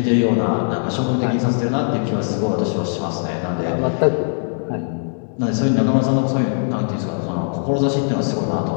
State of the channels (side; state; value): right; silent; digital silence